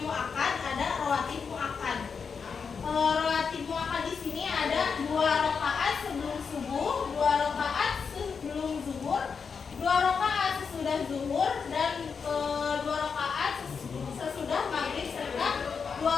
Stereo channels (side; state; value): right; quieter; 5.8 dB